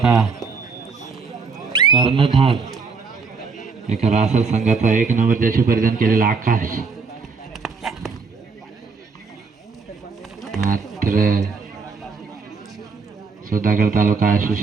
कर्णधार एका रासर संघाचा 1 नंबर जर्सी परिधान केलेला आकाश. मात्र सुधागड तालुका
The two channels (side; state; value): left; quieter; 4.9 dB